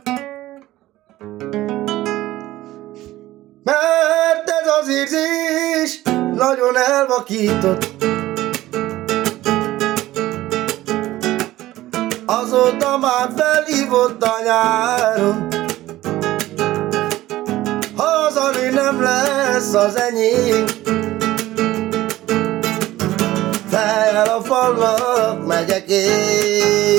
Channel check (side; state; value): left; quieter; 15.9 dB